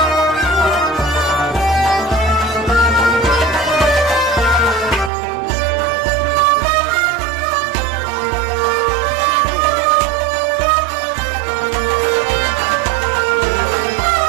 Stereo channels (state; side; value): drops out; left; at 5.1 s